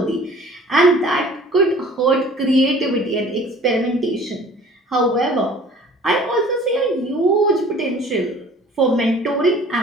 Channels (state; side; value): normal; both; correlation 0.49